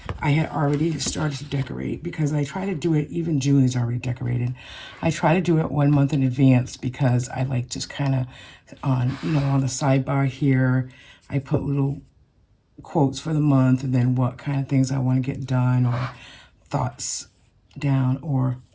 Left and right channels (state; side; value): identical; both; correlation 1.00